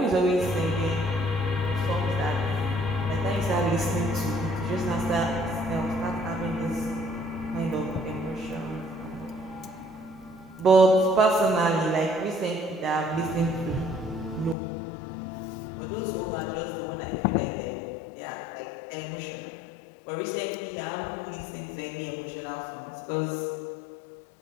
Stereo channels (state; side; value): drops out; right; at 14.6 s